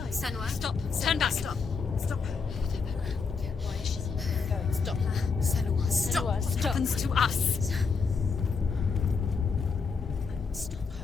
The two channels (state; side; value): quieter; right; 5.1 dB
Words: Senua, Stop. Turn back. Stop. Stop. Why is she going? Stop. Senua, stop. What happens to us? Stop